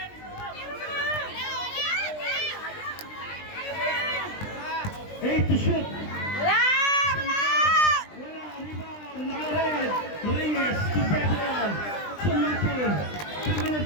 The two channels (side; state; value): right; late; 20 ms